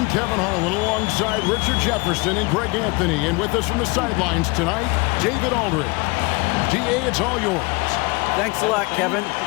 Kevin Harlan alongside Richard Jefferson and Greg Anthony, and with us from the sidelines tonight, David Aldridge. DA, it's all yours. Thanks a lot, Kevin.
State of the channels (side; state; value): right; quieter; 26.6 dB